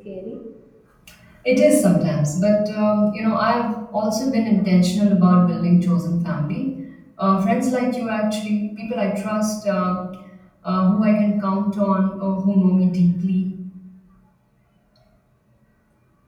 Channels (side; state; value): both; identical; correlation 1.00